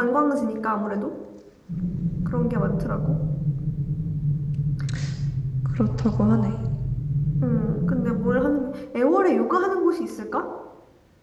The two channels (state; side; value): identical; both; correlation 1.00